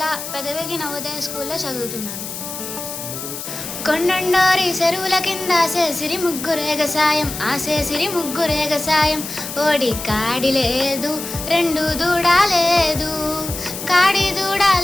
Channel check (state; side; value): noise; left; hiss, 8 dB below the sound